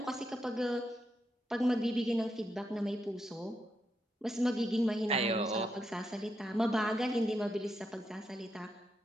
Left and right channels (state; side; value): normal; both; correlation 0.82